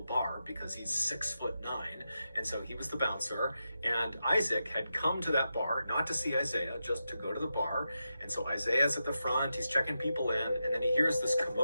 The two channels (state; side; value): inverted; both; correlation -0.88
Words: bar because he's 6'9". 9, and so he was the bouncer, and Isaac had come to that bar, not to see Isaiah, just to go to the bar, and so Isaiah's at the front, he's checking people in, and then he hears this